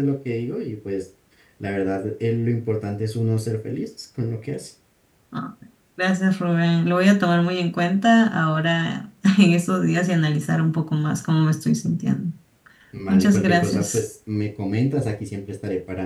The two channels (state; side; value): identical; both; correlation 1.00